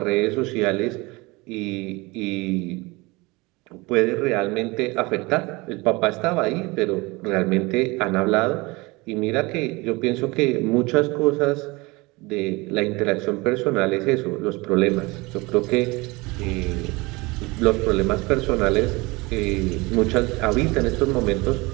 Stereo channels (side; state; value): left; quieter; 23.9 dB